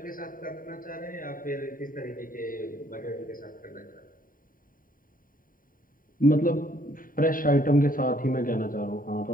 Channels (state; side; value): late; right; 0.41 ms